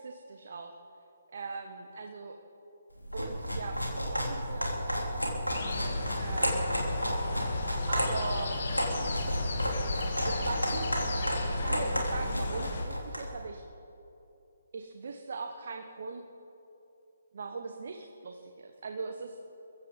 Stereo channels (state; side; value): inverted; both; correlation -0.84